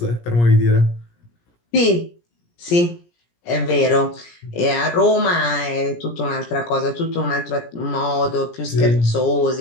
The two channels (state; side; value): late; right; 17 ms